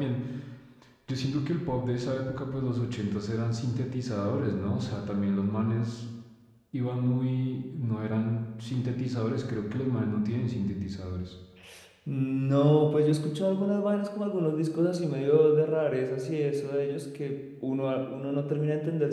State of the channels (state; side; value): identical; both; correlation 1.00